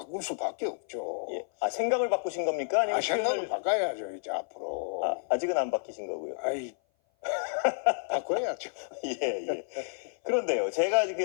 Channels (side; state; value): right; silent; 56 dB below the other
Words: 수밖에 없죠. 예. 아, 생각을 바꾸신 겁니까? 아니면 생각을 바꿔야죠 이제 앞으로. 아직은 안 바뀌신 거고요. 아이 바꿔야죠. 예, 예. 그런데요, 제가 지금